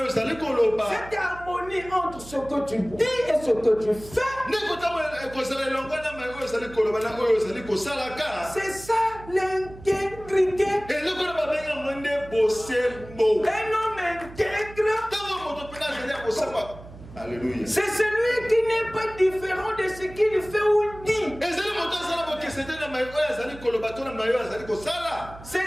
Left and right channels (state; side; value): noise; right; hum, 17 dB below the sound